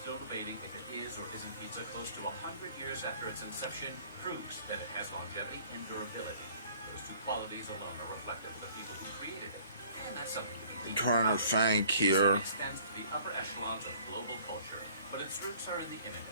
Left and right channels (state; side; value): inverted; both; correlation -0.54